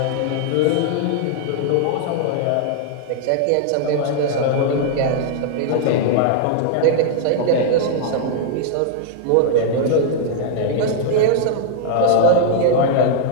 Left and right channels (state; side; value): different; both; correlation 0.00